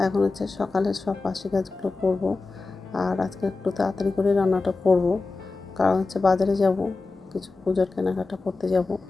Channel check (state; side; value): quieter; right; 3.7 dB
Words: এখন হচ্ছে সকালের সব বাসি কাজগুলো করব। আর আজকে একটু তাড়াতাড়ি করে রান্নাটা করব, কারণ হচ্ছে বাজারে যাব, কিছু পূজার কেনাকাটা করতে যাব।